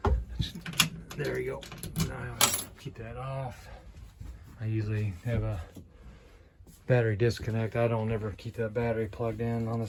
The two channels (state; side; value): identical; both; correlation 1.00